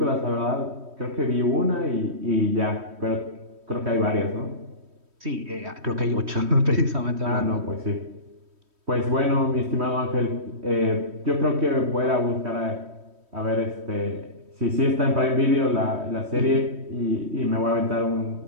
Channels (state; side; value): late; left; 3.1 ms